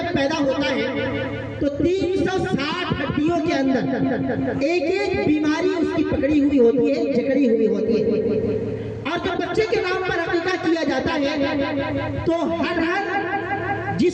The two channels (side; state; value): both; identical; correlation 1.00